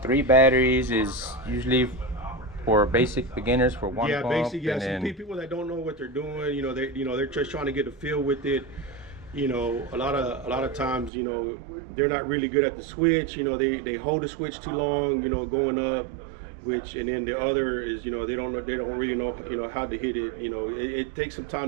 batteries is usually for basic beginners for one pump. Basic. Yeah, some people that don't know what they're doing, they're just trying to get a feel with it. You know, a lot of times, you know, they're not really good at the switch. You know, they hold the switch too long, you know, going up. And then the other is, you know, they don't really know, you know, how to hit it. You know, it takes some time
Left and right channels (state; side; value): drops out; left; at 11.1 s